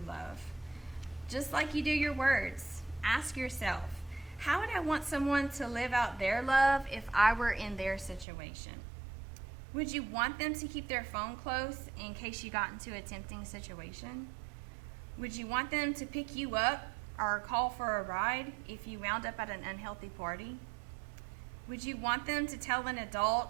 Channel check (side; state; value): left; drops out; at 8.2 s